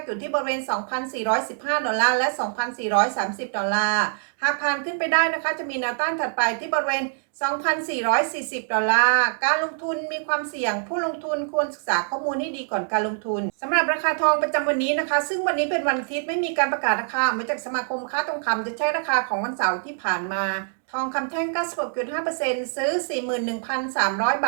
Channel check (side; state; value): left; silent; digital silence